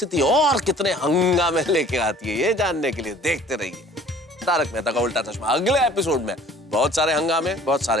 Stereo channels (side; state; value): both; normal; correlation 0.51